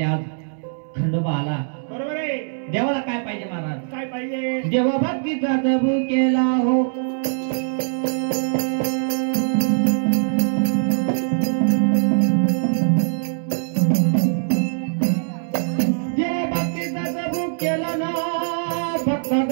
आज खंडोबा आला. बरोबर आहे. देवाला काय पाहिजे महाराज? काय पाहिजे? देवा भक्तीचा भुकेला हो भक्ता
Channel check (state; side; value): silent; left; 64 dB below the other